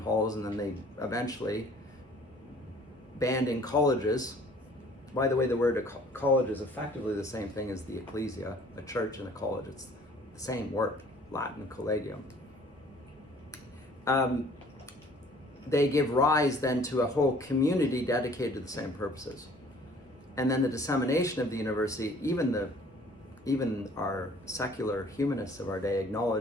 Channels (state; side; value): normal; both; correlation 0.54